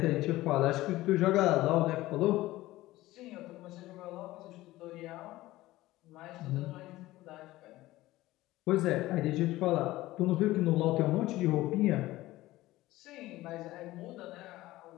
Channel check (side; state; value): right; quieter; 17.2 dB